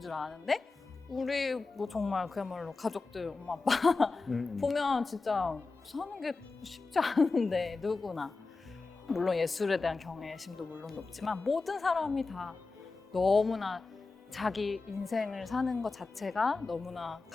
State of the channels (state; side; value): quieter; right; 3.9 dB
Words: 아는데 우리 뭐 정말 그야말로 가족들, 엄마, 아빠 보면 진짜 사는 게 쉽지 않은데 누구나. 물론 예술에 대한 경외심도 물론 높지만 모든 사람이 다 너무나 자기 인생을 사는 것 자체가 너무나